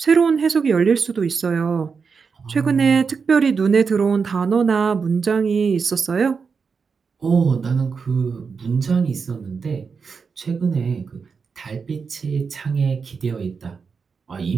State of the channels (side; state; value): left; quieter; 5.4 dB